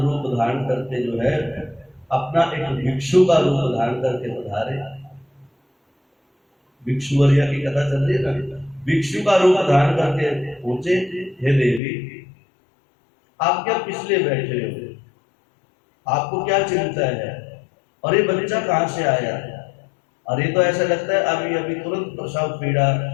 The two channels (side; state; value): right; drops out; at 11.8 s